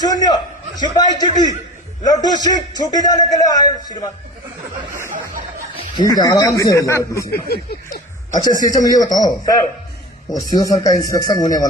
सिपाही चिट्ठी लड्डू सिंह छुट्टी जाने के लिए आए श्रीमान। ठीक है आराम से हो जाओ पीछे। अच्छा सीएचएम ये बताओ, सर वो सीओ सर का इंस्पेक्शन होने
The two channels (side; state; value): both; normal; correlation 0.35